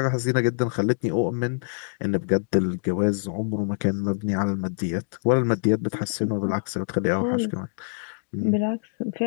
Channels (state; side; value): silent; right; digital silence